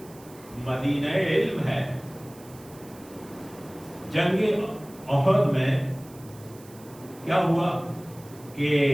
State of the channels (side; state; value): right; noise; hiss, 23 dB below the sound